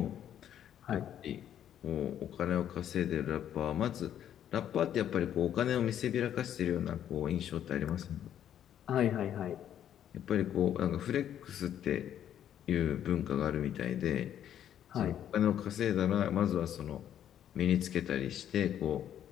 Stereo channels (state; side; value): quieter; right; 10.3 dB